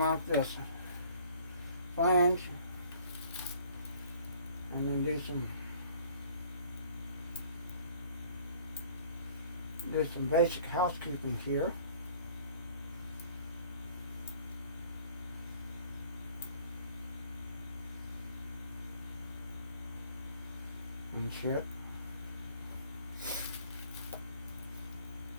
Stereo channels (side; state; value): both; inverted; correlation -0.54